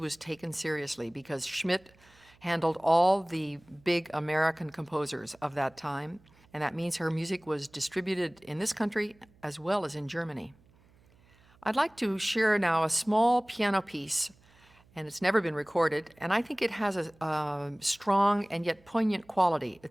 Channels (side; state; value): right; noise; hum, 30 dB below the sound